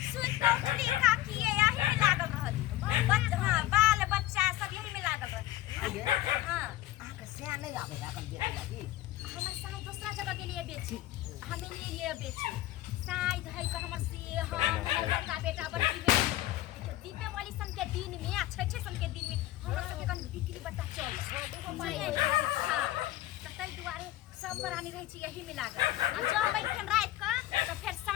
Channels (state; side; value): quieter; right; 15.4 dB